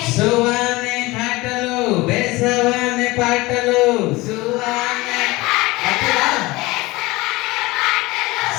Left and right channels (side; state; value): right; quieter; 21.3 dB